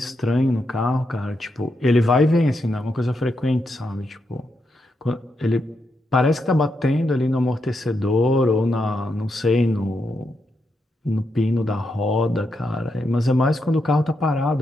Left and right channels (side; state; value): both; normal; correlation 0.83